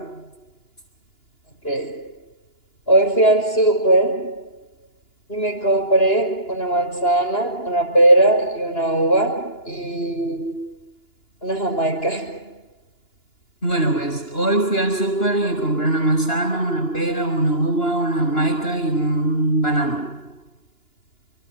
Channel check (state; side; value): late; right; 2.9 ms